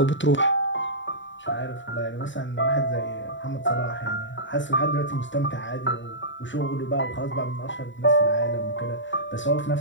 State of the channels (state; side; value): late; right; 0.54 ms